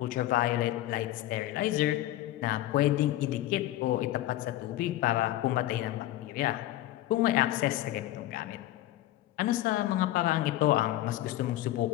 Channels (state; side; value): quieter; right; 14.8 dB